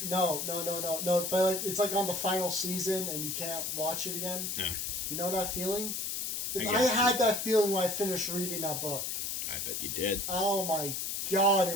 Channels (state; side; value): noise; left; hiss, 2 dB below the sound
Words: No. But like, it's like on the final season and you can't watch it again. Yeah. You know that feeling? I had that feeling when I finished reading that book. I bet you did. Oh my god,